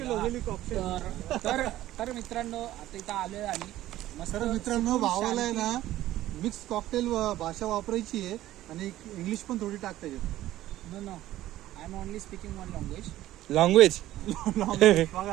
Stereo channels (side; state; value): left; quieter; 14.4 dB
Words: वगैरे झालं. तर मित्रांनो आता इथं आलोय आम्ही मस्त. तर मित्रांनो भावाला आहे ना मिक्स कॉकटेल भाषा वापरायची आहे आणि इंग्लिश पण थोडी टाकता येते. No I am only speaking one language. Language